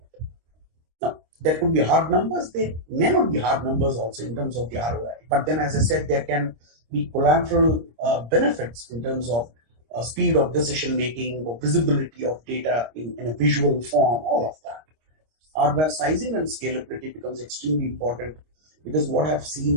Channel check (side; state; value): left; late; 26 ms